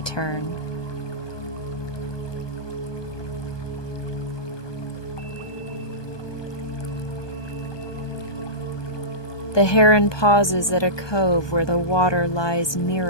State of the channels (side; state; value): right; late; 1.2 ms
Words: turn. The heron pauses at a cove where the water lies